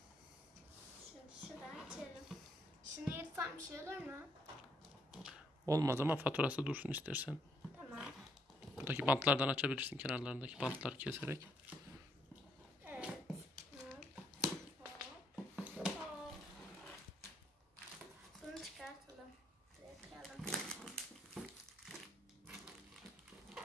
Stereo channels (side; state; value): both; normal; correlation 0.71